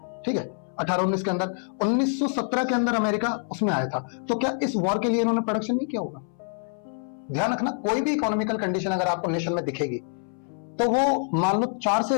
ठीक है, 18-19 के अंदर। 1917 के अंदर अमेरिका उसमें आया था। तो क्या इस वॉर के लिए इन्होंने प्रोडक्शन नहीं किया होगा। ध्यान रखना, कोई भी इकोनॉमिकल कंडीशन अगर आपको नेशन में दिखेगी तो वो मान लो 4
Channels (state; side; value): silent; right; 61 dB below the other